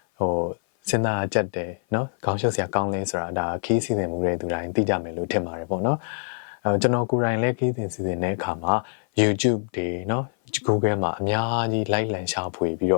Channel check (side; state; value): right; silent; 56 dB below the other